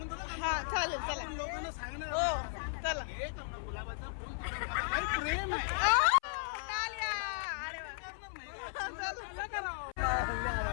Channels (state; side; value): silent; right; 54 dB below the other